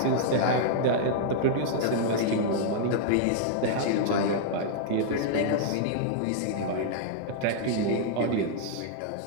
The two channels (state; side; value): different; both; correlation -0.01